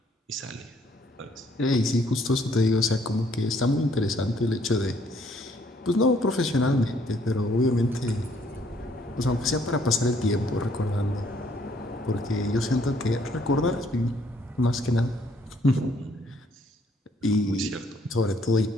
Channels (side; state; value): both; normal; correlation 0.65